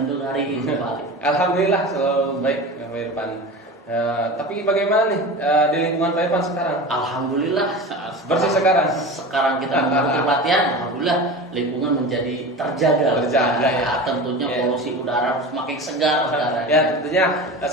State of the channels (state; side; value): normal; both; correlation 0.31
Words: untuk hari ini, Pak Ali? Alhamdulillah selalu baik, Pak Irfan. Tapi bagaimana nih di lingkungan Pak Irfan sekarang? Alhamdulillah Bersih sekarang. Sekarang kita mengikuti pelatihan, alhamdulillah lingkungan menjadi terjaga. Ya. Tentunya polusi udara semakin segar sekarang. Ya tentunya